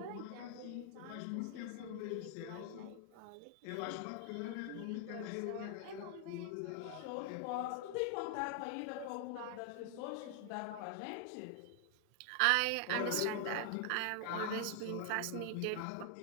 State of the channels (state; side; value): different; both; correlation 0.00